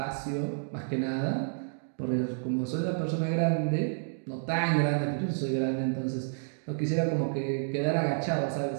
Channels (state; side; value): silent; left; digital silence